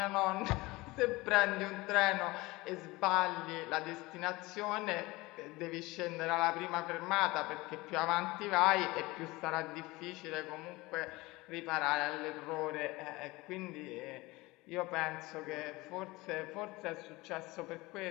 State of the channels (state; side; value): quieter; right; 21.6 dB